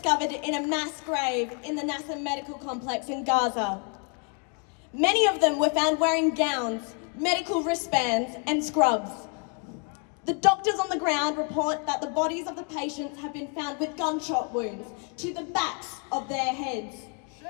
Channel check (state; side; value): quieter; right; 39.3 dB